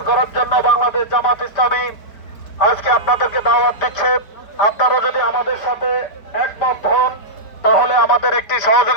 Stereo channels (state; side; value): late; right; 5.0 ms